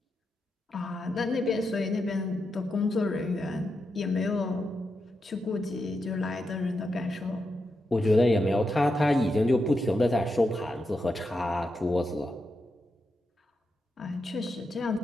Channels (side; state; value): both; normal; correlation 0.86